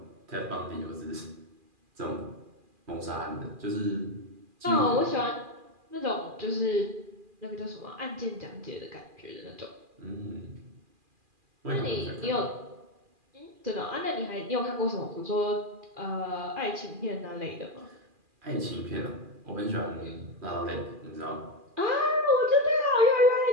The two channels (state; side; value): late; left; 2.4 ms